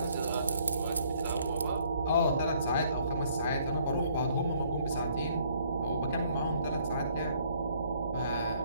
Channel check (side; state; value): both; inverted; correlation -0.63